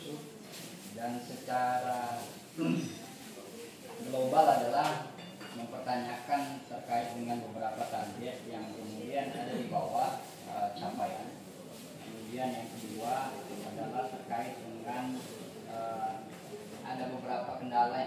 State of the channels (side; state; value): both; identical; correlation 1.00